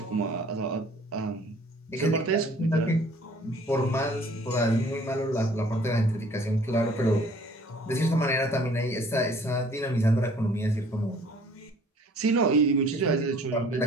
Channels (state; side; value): normal; both; correlation 0.54